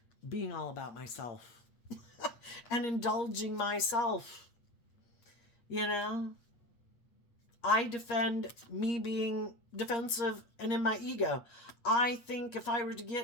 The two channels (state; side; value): late; right; 8.5 ms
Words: being all about myself and indulging myself. I defend me being defensive and in my ego. I think if I were to